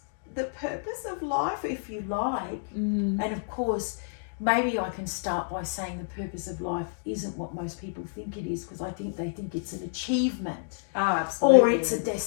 the purpose of life, if you like? And of course, maybe I can start by saying the purpose of life isn't what most people think it is, because I think they think it's an achievement. Absolutely. Or it's a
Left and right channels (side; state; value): right; silent; digital silence